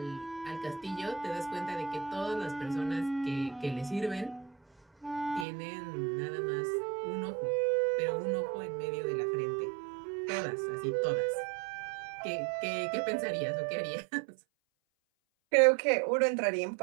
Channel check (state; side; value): drops out; left; at 5.5 s